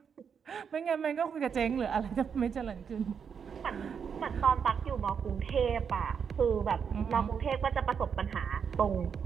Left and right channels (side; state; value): left; quieter; 6.9 dB